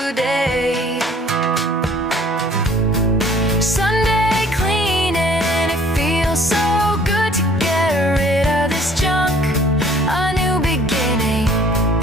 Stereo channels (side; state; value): both; normal; correlation 0.55